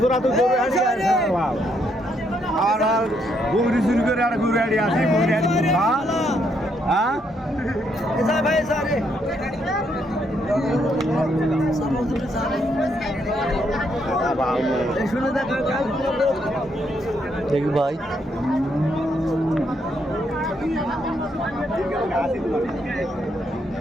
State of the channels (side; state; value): both; normal; correlation 0.75